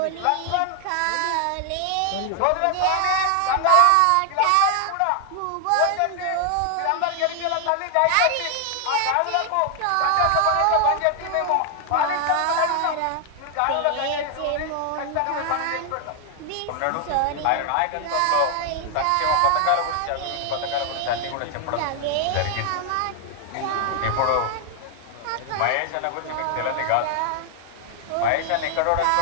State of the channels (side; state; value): both; different; correlation 0.00